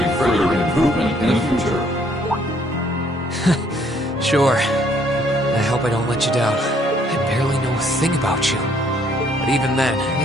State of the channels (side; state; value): both; normal; correlation 0.65